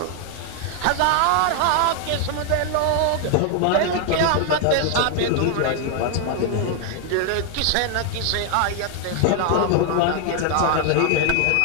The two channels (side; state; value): both; different; correlation 0.00